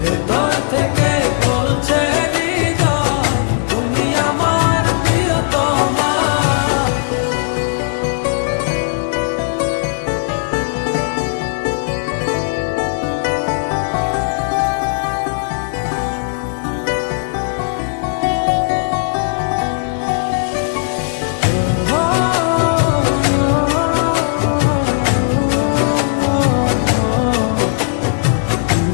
ভেতর থেকে বলছে হৃদয় তুমি আমার প্রিয়তমা।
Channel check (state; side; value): silent; right; digital silence